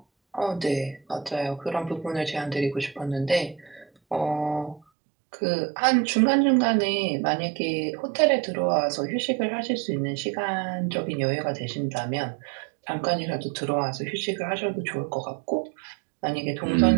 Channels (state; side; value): drops out; left; at 4.8 s